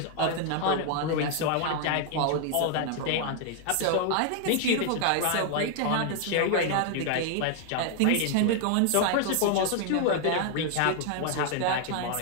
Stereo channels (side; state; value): both; different; correlation 0.00